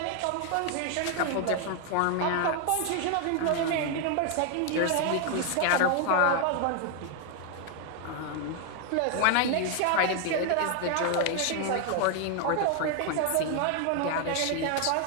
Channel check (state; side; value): different; both; correlation 0.01